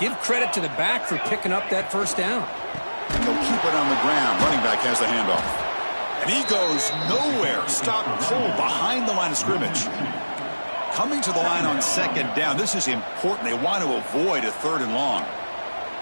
credit to the back for picking up that first down. And they'll keep it on the ground. Running back has the handoff. And he goes nowhere. Stopped cold behind the line of scrimmage. Coming to the line on second down. This is important. They want to avoid a 3rd and long.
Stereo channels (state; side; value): inverted; both; correlation -1.00